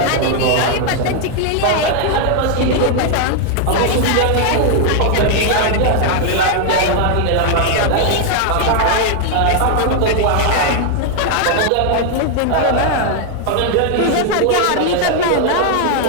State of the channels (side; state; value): both; different; correlation 0.00